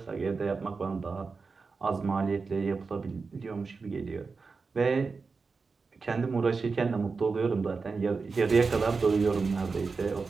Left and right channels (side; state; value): left; quieter; 4.5 dB